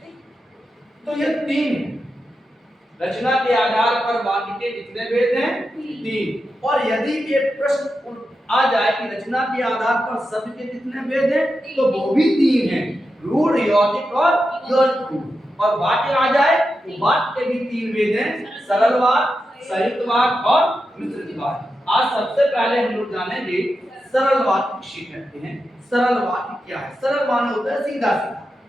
तो ये 3 है। रचना के आधार पर वाक्य के कितने भेद हैं? 3। और यदि ये प्रश्न आ जाए कि रचना के आधार पर शब्द के कितने भेद हैं, तो वो भी 3 हैं, रूढ़, यौगिक और यौगिक। और वाक्य आ जाए तो वाक्य के भी 3 भेद हैं, सरल वाक्य, संयुक्त वाक्य और मिश्रित वाक्य। आज सबसे पहले हम लोग जानेंगे सरल वाक्य किसे कहते हैं। सरल वाक्य क्या है? सरल माने होता है सीधा सीधा।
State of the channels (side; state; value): both; normal; correlation 0.89